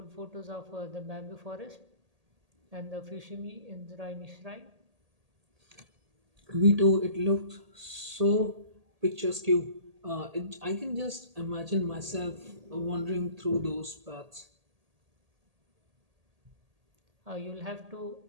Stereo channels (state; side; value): late; left; 1.8 ms